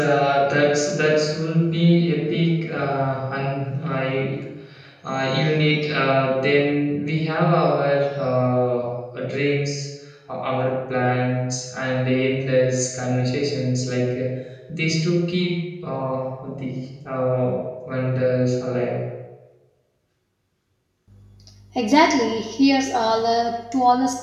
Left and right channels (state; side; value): identical; both; correlation 1.00